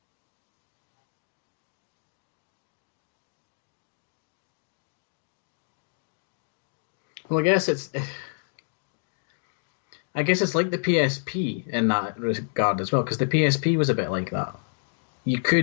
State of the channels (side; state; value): right; silent; digital silence